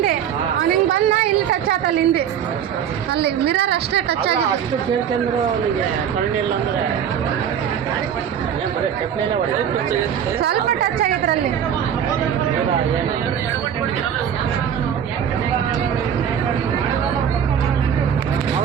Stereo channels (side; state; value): left; quieter; 8.8 dB